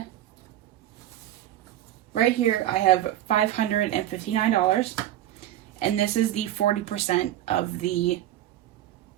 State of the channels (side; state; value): left; quieter; 13.1 dB